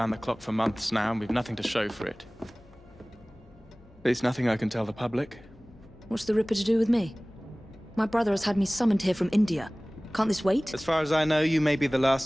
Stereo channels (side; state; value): left; noise; hum, 26 dB below the sound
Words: the clock for months now, and we've nothing to show for it. There's nothing I can tell the public. What's the Ripper to do with me? My brother has had me summoned here from India. Can't this wait? As far as I know, you may be the